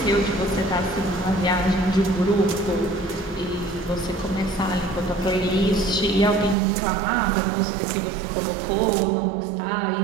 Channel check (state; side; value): drops out; left; at 6.6 s